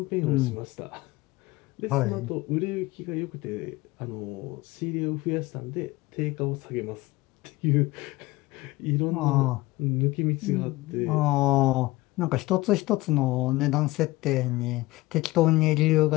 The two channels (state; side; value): quieter; right; 20.1 dB